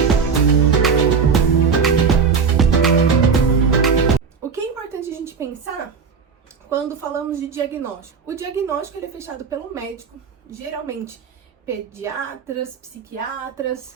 O que é importante a gente pensar quando falamos de diagnóstico? O diagnóstico ele é fechado pelo médico, geralmente pediatras, psiquiatras,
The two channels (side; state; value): left; quieter; 5.7 dB